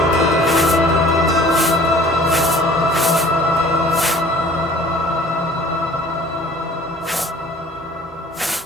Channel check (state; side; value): normal; both; correlation 0.50